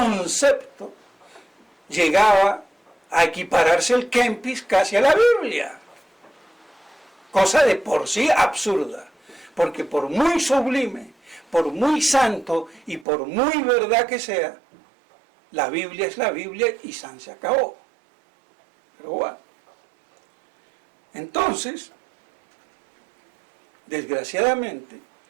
llegaba a equipararse el Kempis casi a la Biblia. Cosa de por sí absurda, porque por muy sublime, por muy santo y por muy verdad que sea, la Biblia es la Biblia y san se acabó. Pero bueno. Entonces, desgraciadamente,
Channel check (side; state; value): left; drops out; at 13.1 s